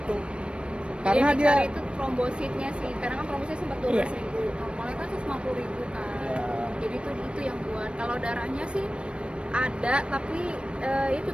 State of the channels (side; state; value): left; late; 0.057 ms